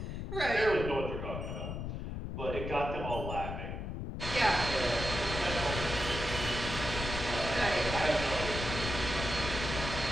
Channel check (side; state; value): left; noise; rumble, 5 dB below the sound